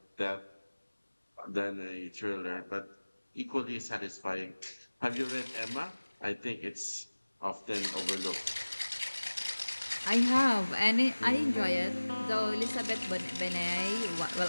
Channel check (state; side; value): inverted; both; correlation -1.00